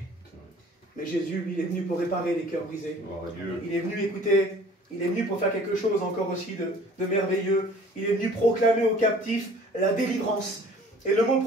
Mais Jésus, lui, il est venu pour réparer les cœurs brisés. Il est venu, écouter, il est venu pour faire quelque chose encore aussi de merveilleux. Il est venu proclamer aux captifs la délivrance. Et le mot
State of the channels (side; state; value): both; normal; correlation 0.50